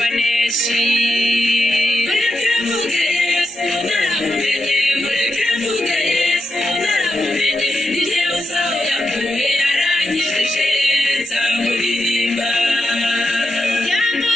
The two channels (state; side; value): normal; both; correlation 0.86